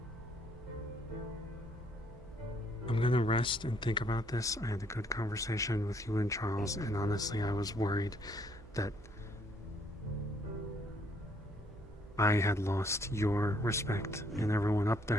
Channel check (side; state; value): right; noise; hum, 21 dB below the sound